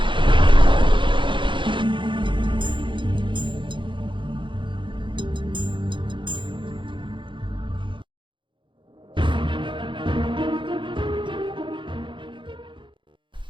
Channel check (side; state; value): left; late; 0.24 ms